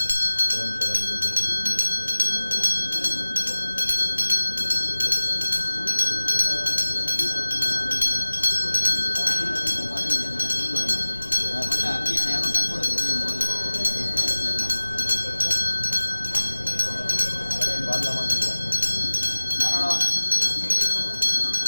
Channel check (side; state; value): both; inverted; correlation -1.00